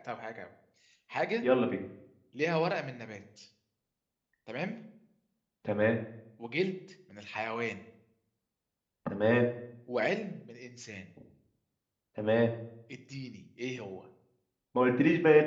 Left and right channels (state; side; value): identical; both; correlation 1.00